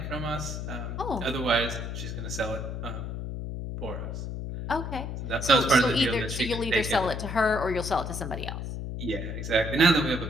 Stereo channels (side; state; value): left; noise; hum, 5 dB below the sound